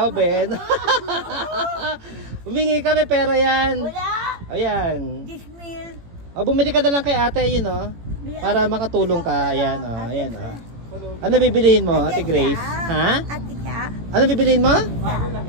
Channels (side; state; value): left; late; 18 ms